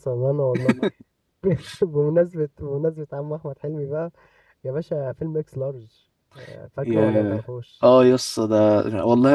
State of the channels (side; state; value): both; identical; correlation 1.00